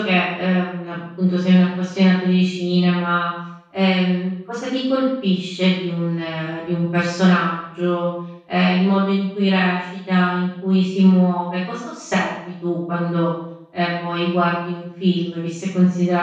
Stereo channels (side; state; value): both; identical; correlation 1.00